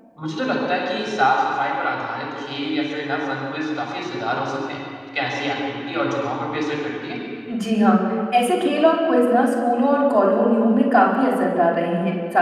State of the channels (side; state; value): both; identical; correlation 1.00